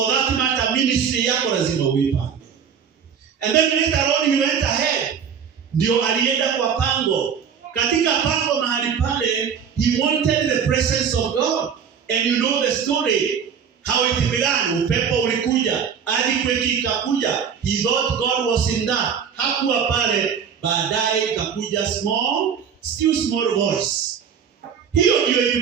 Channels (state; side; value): quieter; left; 7.3 dB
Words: that matter, ministry yako lazima uipange. And then later on he went ahead. Ndio alienda kwa Pango. Katika Pango mahali pale, he wanted the presence of God. And you know the story. How it began. Upepo ulikuja. Earthquake ikakuja. He thought God was in that. Hakuwa pale. Baadaye ikakuja still small voice. Hiyo ndio